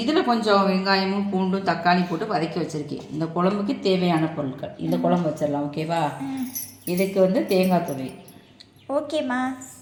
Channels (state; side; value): identical; both; correlation 1.00